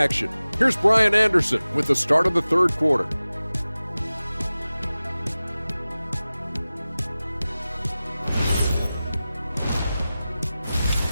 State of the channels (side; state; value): both; inverted; correlation -0.96